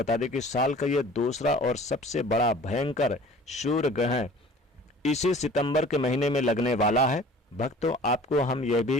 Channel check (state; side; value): normal; both; correlation 0.47